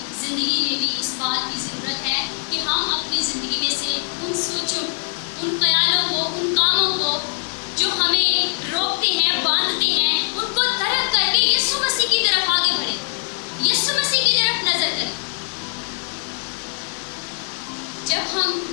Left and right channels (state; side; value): silent; right; 57 dB below the other